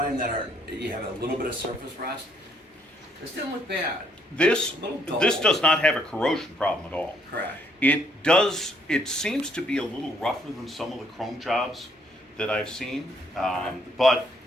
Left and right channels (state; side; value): normal; both; correlation 0.68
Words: that you have a little bit of surface rust. This didn't look bad. This A little dull. this does not have a corrosion problem at all. Correct. It does. It seems to be a little rougher than some of the chrome jobs that I've seen, but